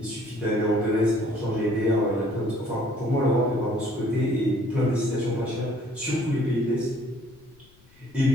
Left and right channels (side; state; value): left; noise; rumble, 29 dB below the sound